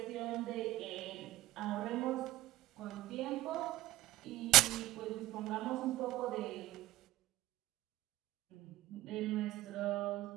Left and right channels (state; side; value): quieter; left; 16.6 dB